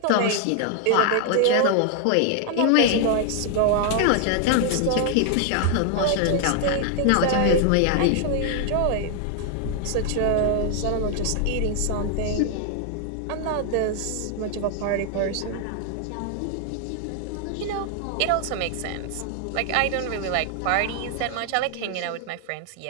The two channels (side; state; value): both; different; correlation 0.00